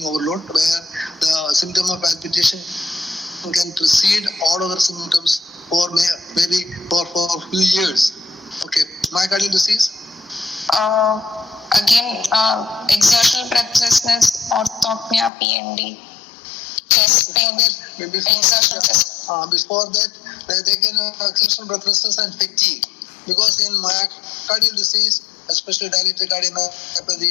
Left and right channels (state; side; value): drops out; right; at 15.3 s